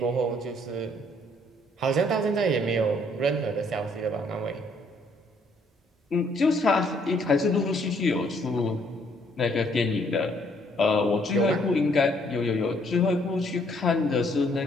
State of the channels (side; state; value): both; normal; correlation 0.66